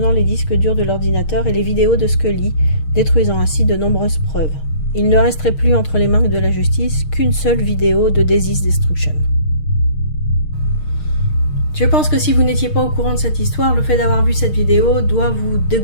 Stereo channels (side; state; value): right; late; 6.5 ms